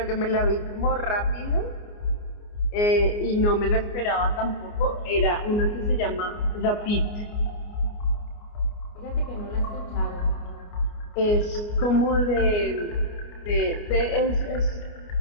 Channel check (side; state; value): right; late; 29 ms